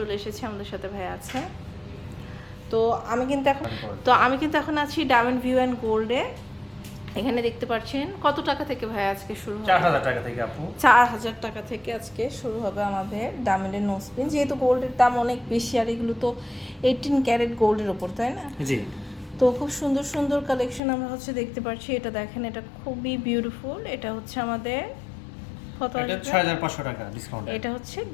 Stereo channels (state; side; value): drops out; right; at 20.8 s